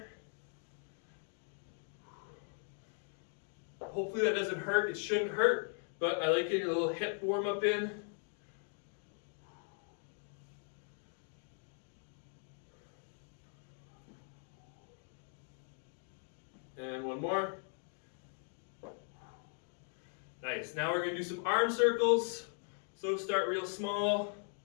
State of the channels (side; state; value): right; silent; 52 dB below the other